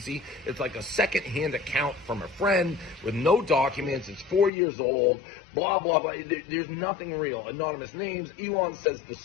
It's like a second-hand account from a friend with no documents. It's 4 years old, blah, blah, blah. There's nothing real. Anonymous names. Elon says the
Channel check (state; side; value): drops out; right; at 4.5 s